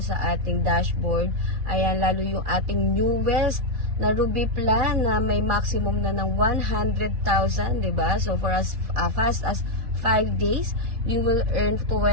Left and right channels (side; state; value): left; late; 4.0 ms